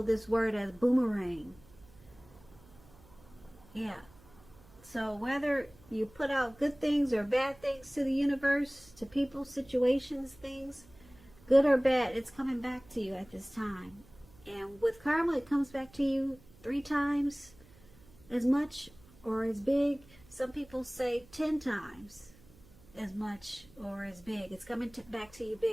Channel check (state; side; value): noise; right; hum, 25 dB below the sound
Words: this word as boomerang. Yeah. So whether you put out good things or bad things to the universe, to people, situations, things, good or bad, it's coming back to you at this time. And with karma, it comes back to you 3 times as much or as big. Some people say 10 times as much or as big. It's coming back to you